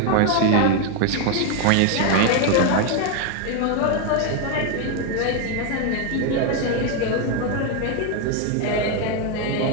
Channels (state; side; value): different; both; correlation 0.01